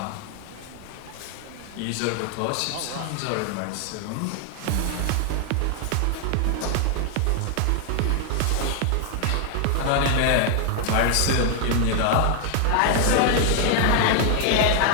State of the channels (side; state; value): both; different; correlation 0.00